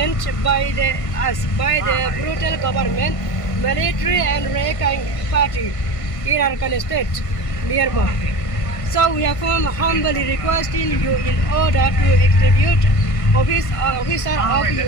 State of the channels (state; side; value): late; right; 1.5 ms